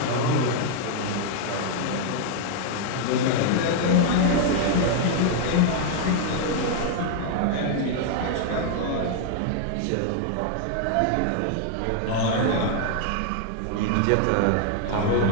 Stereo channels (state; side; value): different; both; correlation 0.00